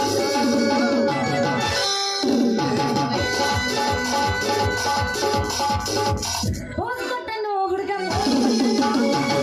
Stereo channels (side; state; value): both; identical; correlation 1.00